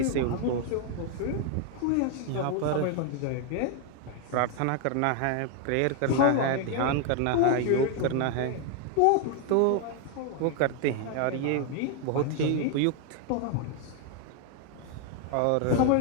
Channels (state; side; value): different; both; correlation 0.01